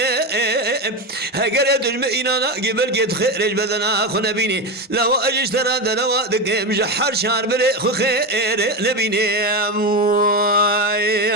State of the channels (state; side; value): normal; both; correlation 0.16